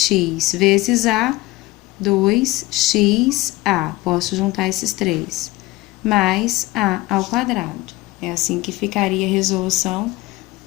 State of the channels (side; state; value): right; quieter; 19.6 dB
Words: vezes a, 2xa. Posso juntar esses três. Mais a ao quadrado. É assim que ficaria a resolução